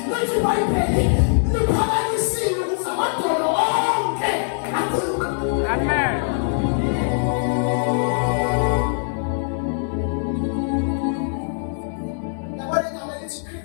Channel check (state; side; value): silent; right; digital silence